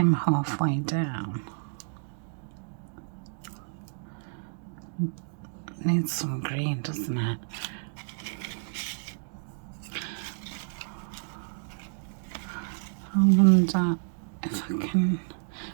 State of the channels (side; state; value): left; silent; digital silence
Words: halfway down. Needs some green, doesn't it? I wonder if I can.